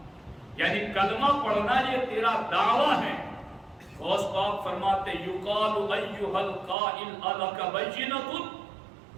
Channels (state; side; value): drops out; left; at 6.8 s